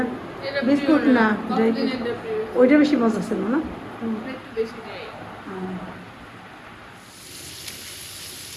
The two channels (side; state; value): both; identical; correlation 1.00